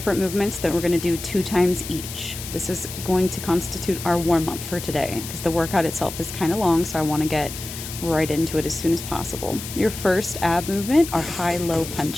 movements that we're going to do 2 times each. This is going to constitute our warm-up for today because the workout itself is kind of long, so I want to get right into it as soon as possible. Your first ab movement are high-low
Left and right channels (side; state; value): left; noise; hiss, 10 dB below the sound